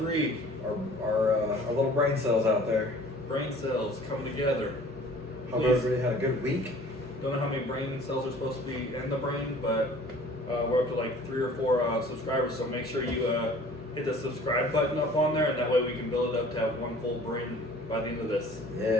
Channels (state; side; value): normal; both; correlation 0.49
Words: Our little brain cells out there. Brain cells coming together. Hope Please. everybody had a good week. Don't know how many brain cells are supposed to be in the brain, but we're up to like 3 or 4 subscribers, so make sure you hit the subscribe button up on there, and that way we can build it up to have one full brain by the end of this.